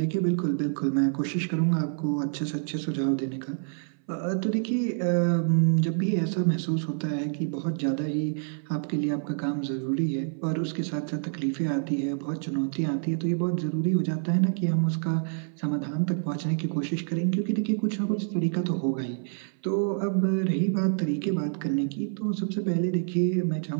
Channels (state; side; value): silent; left; 60 dB below the other